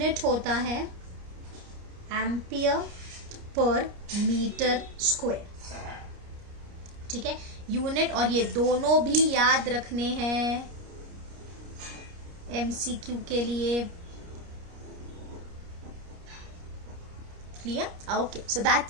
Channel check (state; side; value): late; left; 29 ms